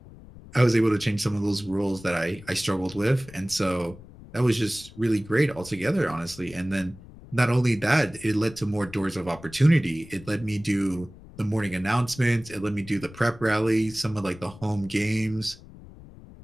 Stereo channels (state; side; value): noise; left; rumble, 19 dB below the sound